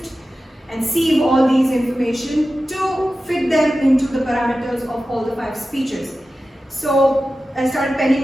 and sieve all these information to fit them into the parameters of all the 5 speeches. So I started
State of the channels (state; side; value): normal; both; correlation 0.94